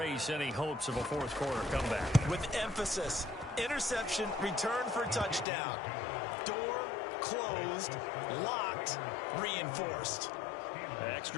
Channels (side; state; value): right; drops out; at 5.5 s